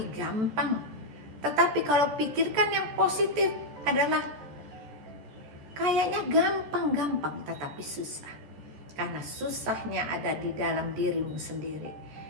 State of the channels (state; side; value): late; left; 14 ms